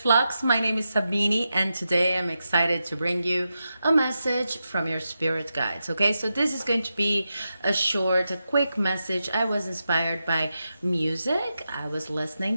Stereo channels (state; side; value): inverted; both; correlation -0.89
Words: My name is Sabine and today I'm excited to bring you a message from your spirit guides. Okay, so this is going to be a quick message. I was inspired by music. I was listening